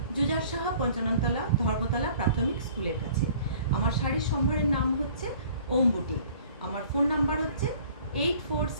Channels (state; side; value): inverted; both; correlation -0.51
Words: জুজার সাহা পঞ্চাননতলা ধর্মতলা প্রাথমিক স্কুলের কাছে। আমার শাড়ির সম্ভারের নাম হচ্ছে ওম বুটিক। আমার ফোন নাম্বার হচ্ছে